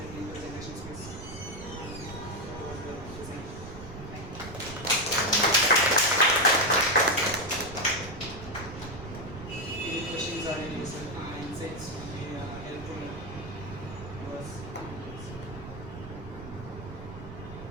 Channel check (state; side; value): noise; right; rumble, 11 dB below the sound